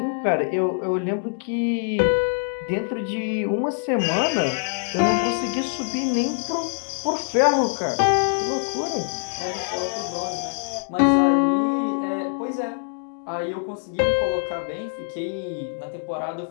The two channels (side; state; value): right; silent; digital silence